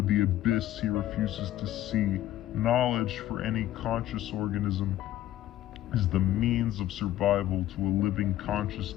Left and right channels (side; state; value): right; quieter; 13.6 dB